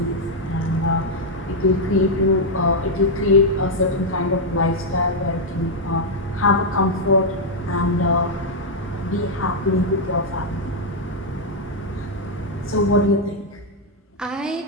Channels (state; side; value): normal; both; correlation -0.01